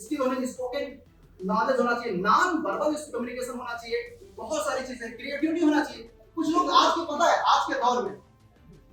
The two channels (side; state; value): both; identical; correlation 1.00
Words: होने, स्पोकन नॉलेज होना चाहिए, नॉन वर्बल कम्युनिकेशन होना चाहिए, बहुत सारी चीजें, क्रिएटिविटी होना चाहिए। कुछ लोग आज के पता है आज के दौर में